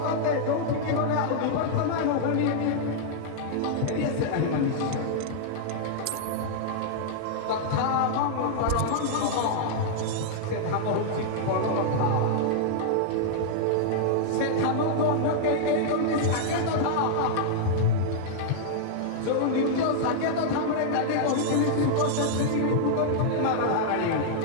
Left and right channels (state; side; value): different; both; correlation -0.01